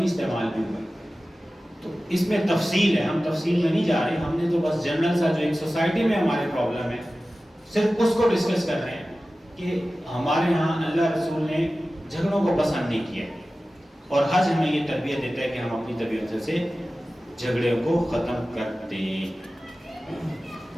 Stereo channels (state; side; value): normal; both; correlation 0.96